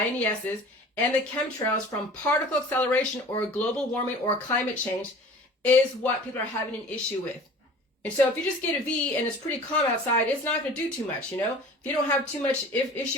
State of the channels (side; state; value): both; normal; correlation 0.43